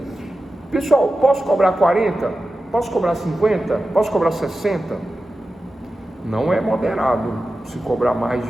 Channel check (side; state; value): both; normal; correlation 0.93